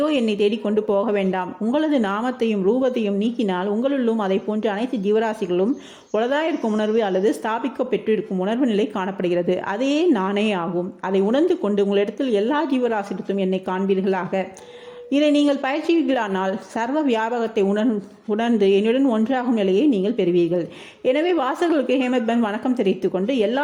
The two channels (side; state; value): both; identical; correlation 1.00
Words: என்னை தேடிக்கொண்டு போக வேண்டாம். உங்களது நாமத்தையும் ரூபத்தையும் நீக்கினால் உங்களுள்ளும் அதை போன்ற அனைத்து ஜீவராசிகளும் உளதாயிருக்கும் உணர்வு அல்லது ஸ்தாபிக்க பெற்றிருக்கும் உணர்வு நிலை காணப்படுகிறது. அதே நானே ஆகும். அதை உணர்ந்து கொண்டு உங்களிடத்தில் எல்லா ஜீவராசிகளும் என்னை காண்பீர்களாக. இதை நீங்கள் பயிற்சிகளானால் சர்வ வியாபகத்தை உணர்ந்து என்னுடன் ஒன்றாகும் நிலையை நீங்கள் பெறுவீர்கள். எனவே வாசகர்களுக்கு ஹேமந்த் பந்த் வணக்கம் தெரிவித்துக் கொண்டு